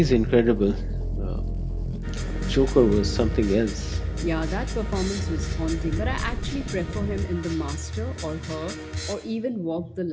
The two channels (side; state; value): both; identical; correlation 1.00